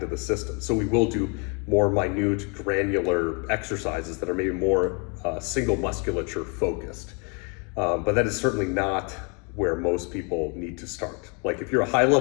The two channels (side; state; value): right; quieter; 34.6 dB